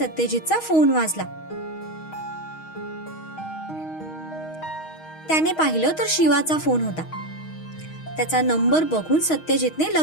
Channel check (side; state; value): right; late; 6.3 ms